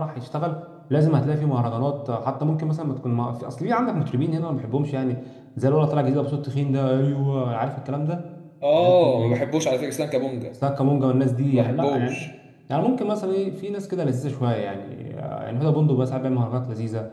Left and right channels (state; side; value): identical; both; correlation 1.00